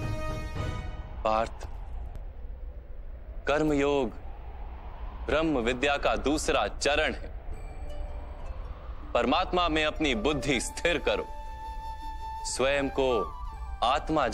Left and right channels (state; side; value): identical; both; correlation 1.00